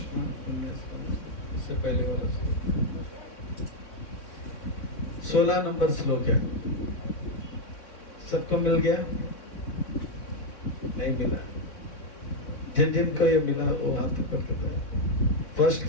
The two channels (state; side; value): late; right; 3.4 ms